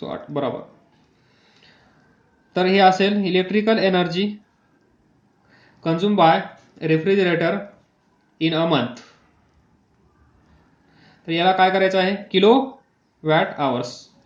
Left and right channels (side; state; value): both; identical; correlation 1.00